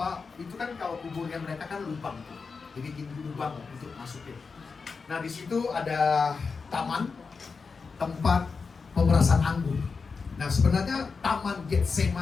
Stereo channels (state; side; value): quieter; right; 4.9 dB